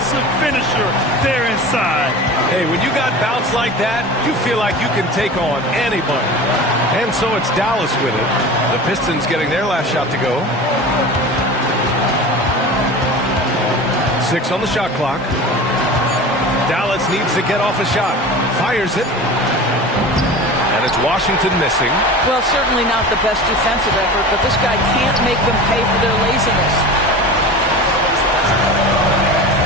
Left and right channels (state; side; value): normal; both; correlation 0.34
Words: finisher there inside. Hey, when you got bounce like that, you feel like you can take on anybody. And so it's Dallas with it. The Pistons getting their last shot to go. 6 on the shot clock. Dallas needs to get off a shot. Fires it. And it's Washington missing. Well, certainly not the best defensive effort, but this guy can't make them pay for their laziness.